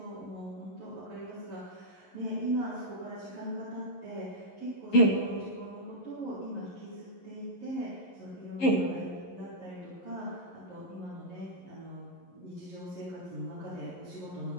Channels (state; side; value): late; right; 11 ms